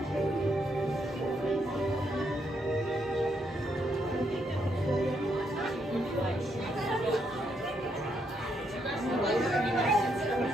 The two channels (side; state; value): both; normal; correlation 0.76